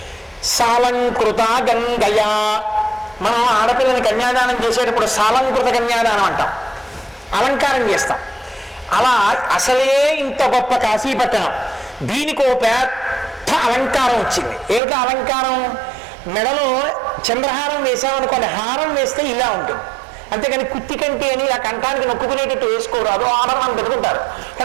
సాలంకృత గంగయా. మనం ఆడపిల్లని కన్యాదానం చేసేటప్పుడు సాలంకృత కన్యాదానం అంటాం, అలంకారం చేస్తాం. అలా అసలే ఇంత గొప్ప కాశీపట్టణం, దీనికి ఓ పెద్ద అలంకారం వచ్చింది. ఏమిటో అలంకారం? మెడలో చంద్రహారం వేసామనుకోండి, హారం వేస్తే ఇలా ఉంటుంది. అంతేకాని కుత్తి కంటి అని ఆ కంఠానికి నొక్కుకునేటట్టు వేసుకోరాదు, ఆభరణం పెట్టుకుంటారు.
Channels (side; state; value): left; drops out; at 14.8 s